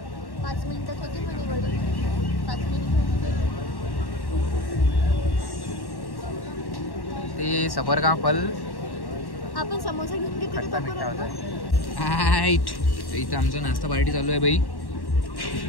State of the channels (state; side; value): late; right; 1.1 ms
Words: 5 मिनिटात होती म्हणे वडी. 5 मिनिट ते सबर का फल. आपण समोसा घेऊन घेतो. इथं आमचा नाश्ता पार्टी चालू आहे बाई.